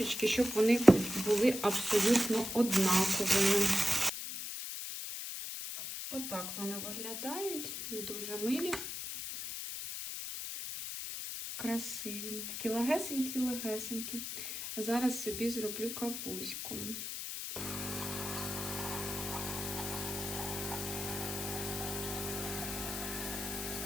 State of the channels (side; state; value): left; noise; hiss, 6 dB below the sound